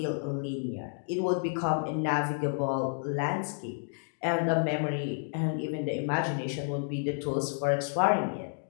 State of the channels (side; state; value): right; silent; digital silence